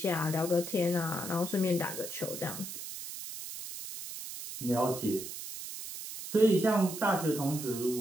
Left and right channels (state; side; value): noise; right; hiss, 9 dB below the sound